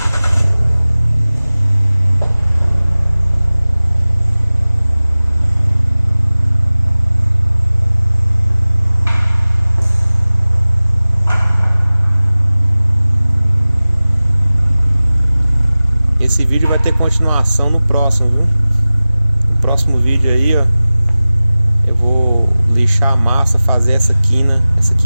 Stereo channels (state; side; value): inverted; both; correlation -0.98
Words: Esse vídeo vai ter continuação no próximo, viu? No próximo vídeo aí, ó, eu vou lixar a massa, fazer essa